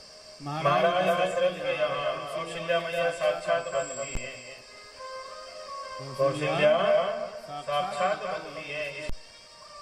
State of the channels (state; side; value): identical; both; correlation 1.00